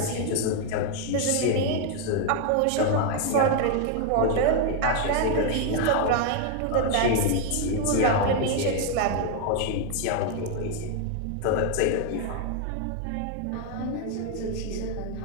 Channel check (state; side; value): different; both; correlation 0.01